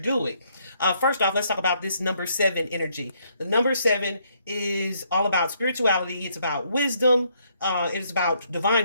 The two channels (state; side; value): inverted; both; correlation -0.70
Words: First off, let's talk about this number 7 energy. The number 7 is all about spirituality. It's about wisdom. It is about